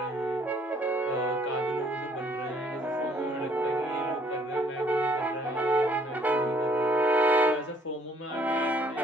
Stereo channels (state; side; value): normal; both; correlation 0.62